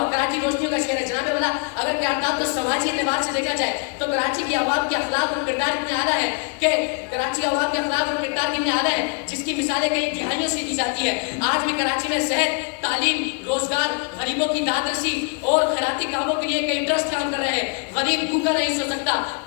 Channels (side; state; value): right; quieter; 36.3 dB